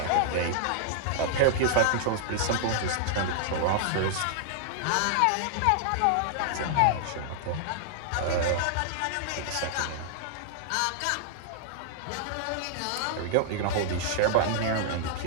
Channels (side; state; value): both; different; correlation -0.01